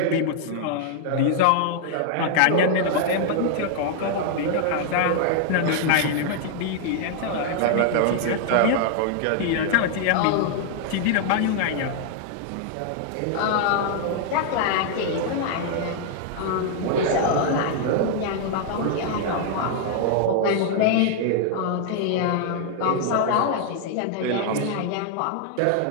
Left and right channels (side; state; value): both; different; correlation 0.00